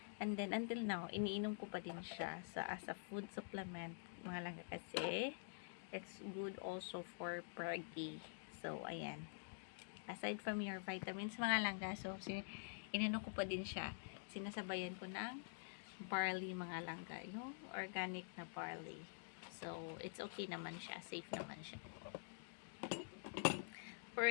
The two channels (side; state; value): right; silent; digital silence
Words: And then, until now, iniinom ko pa din siya as a food supplement, mga langga, kasi it's good also for preggy. So, ayan. Aside from your vitamins, mga langga, so, ininom ko pa din siya. Sinasabayan ko ng barley, mga langga. Yung organic na barley. So, it's okay naman siya. Safe naman siya. Pero